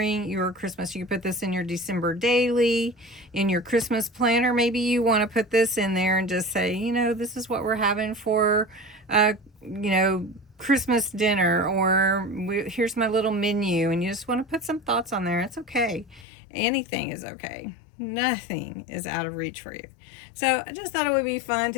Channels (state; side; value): drops out; right; at 16.2 s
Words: your Christmas. You can put this in your December daily, in your Christmas planner. Maybe you want to put this in there and just say, you know, this is what we're having for, you know, Christmas dinner, or here's my little menu, and you just want to put some thoughts on there. It's okay. Anything is okay. Nothing is out of reach for you. So I just thought it would be fun